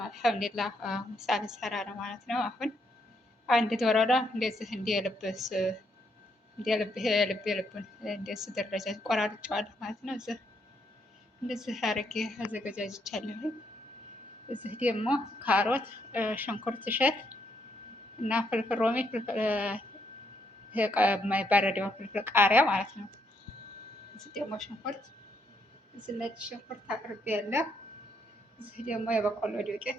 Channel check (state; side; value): normal; both; correlation 0.75